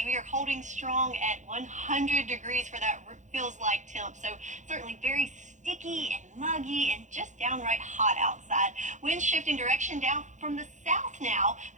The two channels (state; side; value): late; left; 0.35 ms